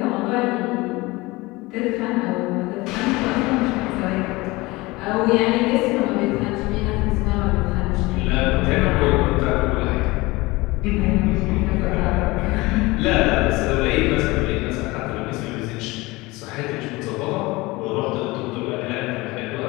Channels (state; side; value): quieter; right; 21.9 dB